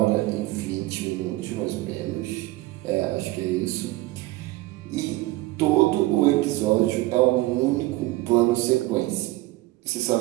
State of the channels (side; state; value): left; quieter; 18.9 dB